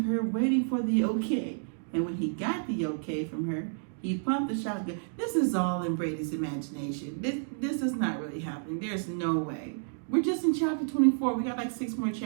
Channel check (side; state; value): left; silent; digital silence